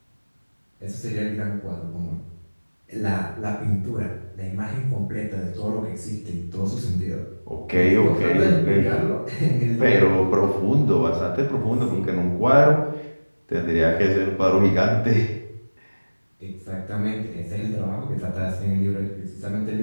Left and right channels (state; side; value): inverted; both; correlation -1.00